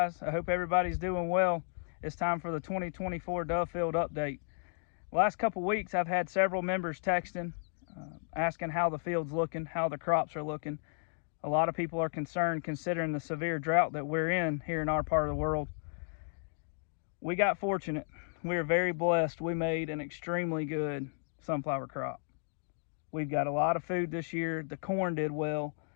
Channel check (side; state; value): right; silent; digital silence